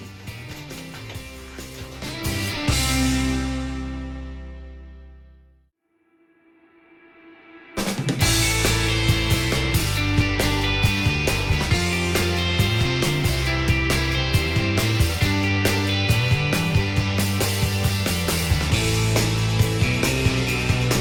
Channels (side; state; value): both; identical; correlation 1.00